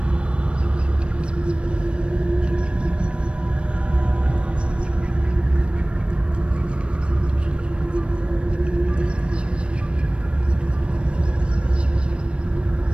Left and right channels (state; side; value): late; left; 0.058 ms